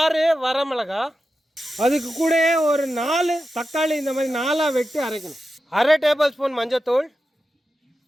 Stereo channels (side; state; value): both; normal; correlation 0.91